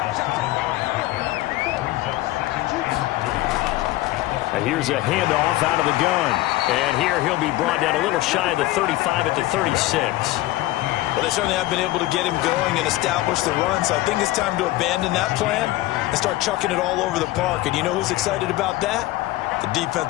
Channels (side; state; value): right; quieter; 17.3 dB